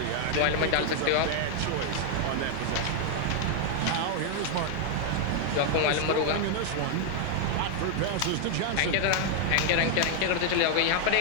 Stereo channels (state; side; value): different; both; correlation 0.00